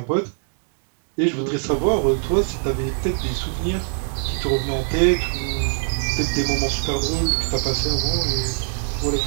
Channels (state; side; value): silent; left; digital silence